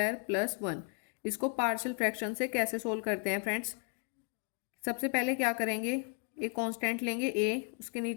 प्लस 1, इसको पार्शियल फ्रैक्शन से कैसे सोल्व करते हैं फ्रेंड्स। सबसे पहले क्या करेंगे, एक कांस्टेंट लेंगे a, उसके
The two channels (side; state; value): right; quieter; 37.0 dB